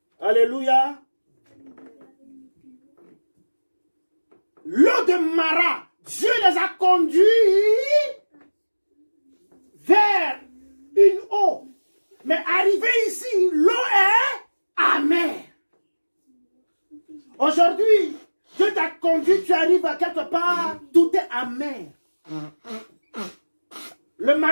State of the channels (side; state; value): both; inverted; correlation -1.00